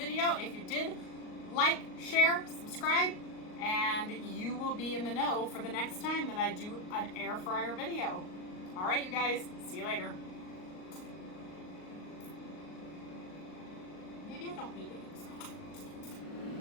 If you did, like, share, subscribe, and you will be in the know for the next time that I do an air fryer video. All right, you guys, see you later. Maybe I don't need eggs.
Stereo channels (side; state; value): right; late; 38 ms